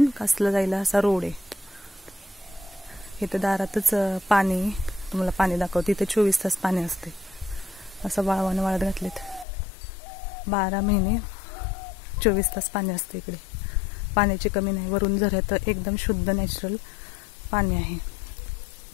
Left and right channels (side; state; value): right; drops out; at 9.5 s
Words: कासला जायला असा रोड आहे. इथं दारातच पाणी, तुम्हाला पाणी दाखवते. इथे 24 तास पाणी असते. असं वाळवानं वाळत घातलेत. 12 महिने 24 तास पाणी असते इकडे. पाण्याची कमी नाही. वरून झऱ्यात एकदम शुद्ध नॅचरल पाणी आहे.